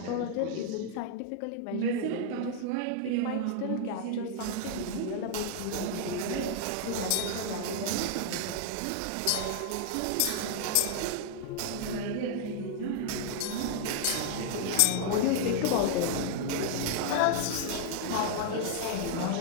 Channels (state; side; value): different; both; correlation -0.01